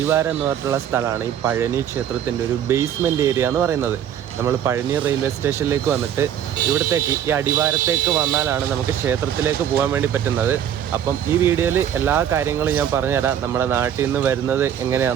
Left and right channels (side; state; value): left; quieter; 9.7 dB